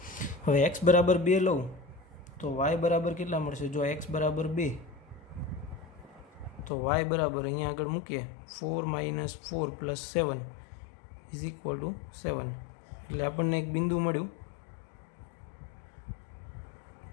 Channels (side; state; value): right; drops out; at 6.7 s